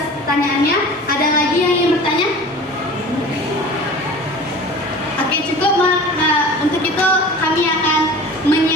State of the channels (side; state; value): both; normal; correlation 0.40